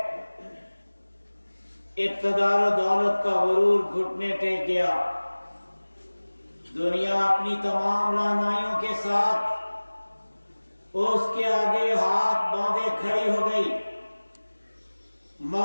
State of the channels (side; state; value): both; inverted; correlation -1.00